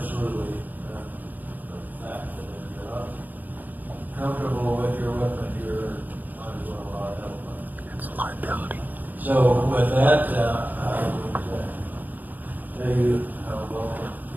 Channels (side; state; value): left; late; 0.083 ms